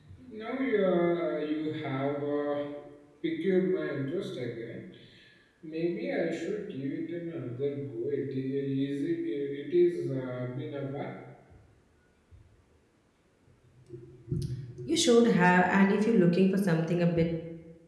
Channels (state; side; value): identical; both; correlation 1.00